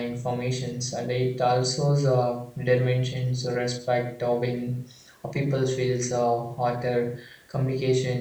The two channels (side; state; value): both; identical; correlation 1.00